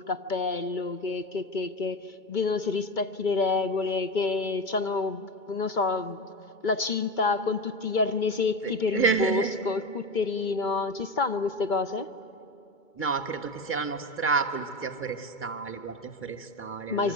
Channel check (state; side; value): late; right; 2.2 ms